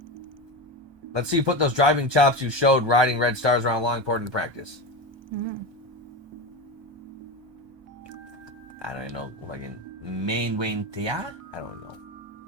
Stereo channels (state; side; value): late; left; 1.2 ms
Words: Let's see you put those driving chops you showed riding red stars around Longport into practice. I don't even know, fucking main Wayne Tia? I don't know.